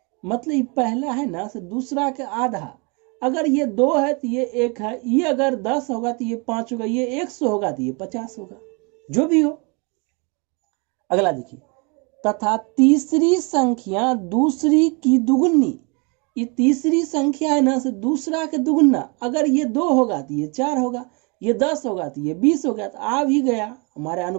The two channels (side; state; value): left; quieter; 31.9 dB